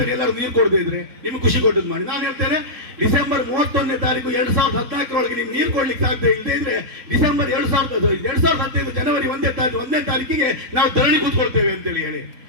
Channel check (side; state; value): left; late; 3.9 ms